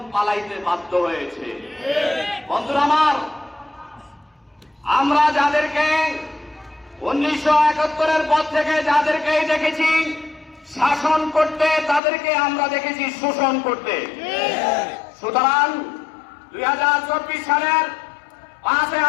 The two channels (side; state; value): right; drops out; at 12.0 s